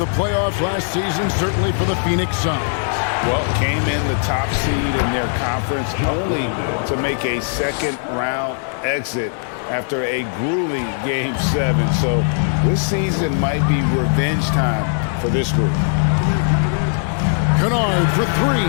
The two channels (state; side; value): silent; right; 66 dB below the other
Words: playoffs last season, certainly for the Phoenix Suns. Well, came in the top seed in their conference only to make a second-round exit after a grueling Game 7. So this season might be revenge time for this group. Kennard for